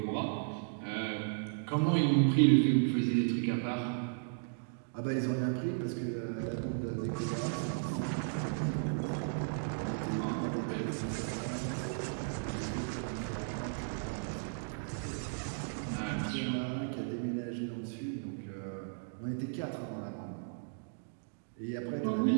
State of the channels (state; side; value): silent; left; digital silence